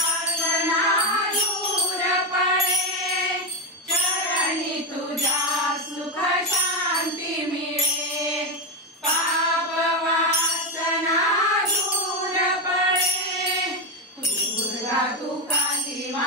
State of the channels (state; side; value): normal; both; correlation 0.10